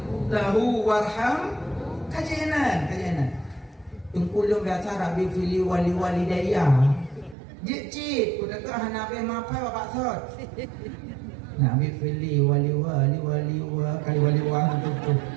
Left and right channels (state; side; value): drops out; left; at 7.4 s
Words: lahu warham kajainan. Tungkulung biasa Rabbi fili wali daya. Cik udah ke hanabe mapai bapak sot. Nabi fili wali kali wali tutup.